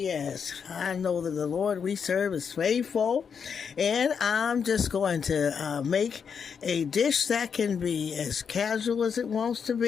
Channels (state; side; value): quieter; right; 6.6 dB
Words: I know that the Lord we serve is faithful. And I'm just going to make a dish that can be as casual as it wants to